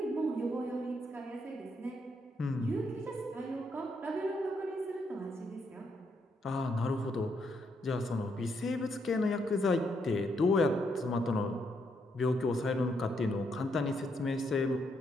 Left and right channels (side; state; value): both; normal; correlation 0.77